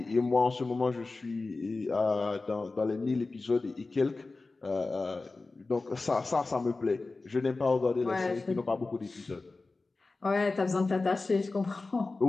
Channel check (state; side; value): quieter; right; 3.6 dB